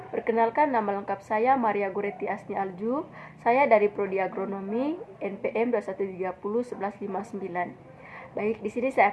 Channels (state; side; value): identical; both; correlation 1.00